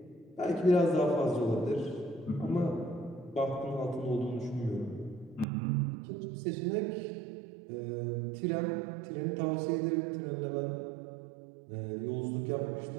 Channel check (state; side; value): drops out; left; at 5.5 s